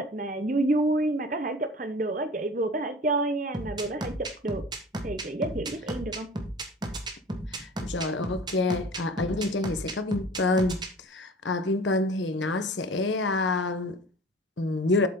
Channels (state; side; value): normal; both; correlation 0.42